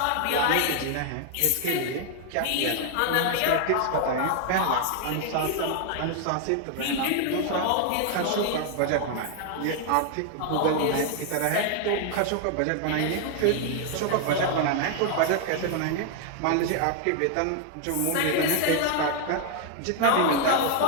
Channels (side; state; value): both; different; correlation 0.00